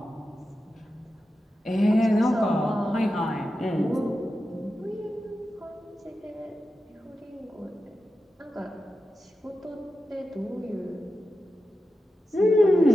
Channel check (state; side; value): normal; both; correlation 0.91